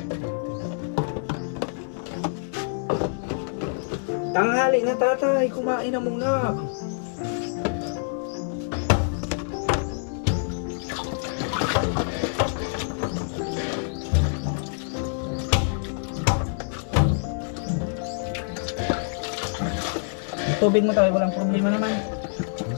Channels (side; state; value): right; silent; digital silence